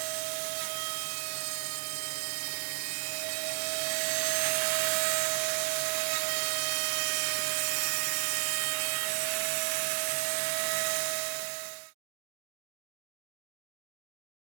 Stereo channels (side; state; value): left; silent; digital silence